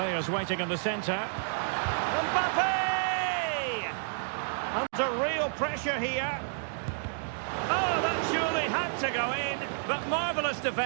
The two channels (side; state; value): left; silent; digital silence